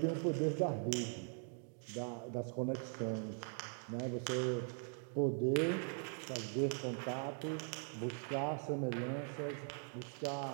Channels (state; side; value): silent; left; 50 dB below the other